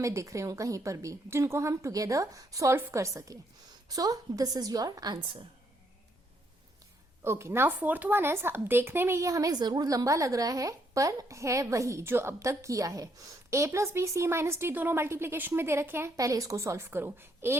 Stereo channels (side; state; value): both; normal; correlation 0.73